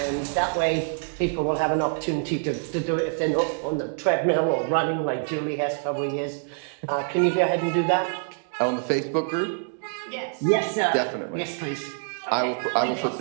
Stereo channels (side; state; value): left; silent; digital silence